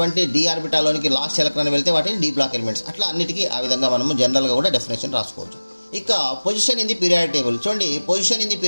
డి ఆర్బిటాల్లోనికి లాస్ట్ ఎలక్ట్రాన్ వెళ్తే వాటిని డి బ్లాక్ ఎలిమెంట్స్. అట్లా అన్నిటికీ ఆ విధంగా మనము జనరల్గా కూడా డెఫినేషన్ రాసుకోవచ్చు. ఇక position in the periodic table. చూడండి, position in the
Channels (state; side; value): inverted; both; correlation -1.00